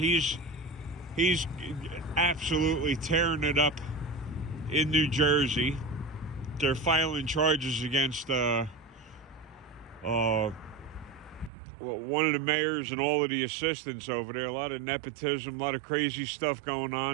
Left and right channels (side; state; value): left; drops out; at 11.5 s